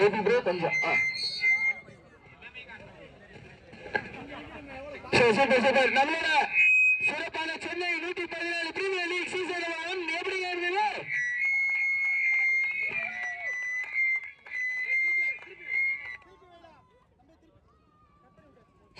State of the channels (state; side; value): identical; both; correlation 1.00